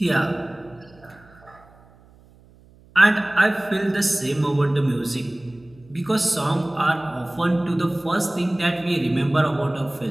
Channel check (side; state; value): right; noise; hum, 27 dB below the sound